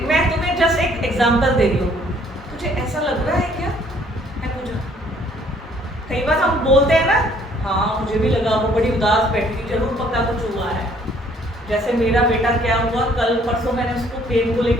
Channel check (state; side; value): normal; both; correlation 0.61